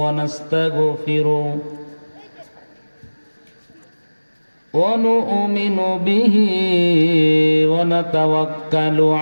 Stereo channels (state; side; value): inverted; both; correlation -1.00